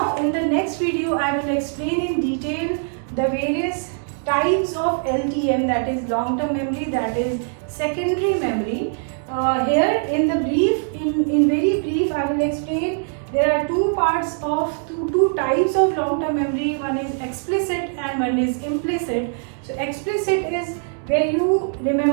in the next video I will explain in detail the various types of LTM, that is long-term memory, that is secondary memory. Here in very brief I will explain there are two types of long-term memory. One is explicit and one is implicit. So explicit is where you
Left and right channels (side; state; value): left; silent; 64 dB below the other